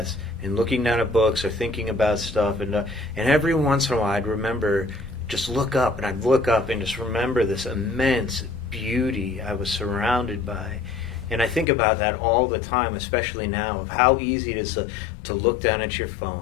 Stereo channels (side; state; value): right; drops out; at 11.7 s